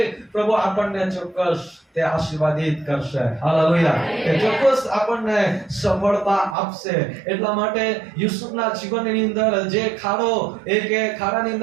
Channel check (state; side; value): drops out; left; at 6.6 s